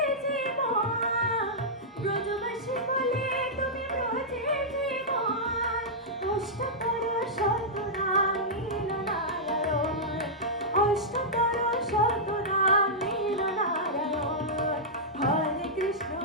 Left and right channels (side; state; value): both; normal; correlation -0.10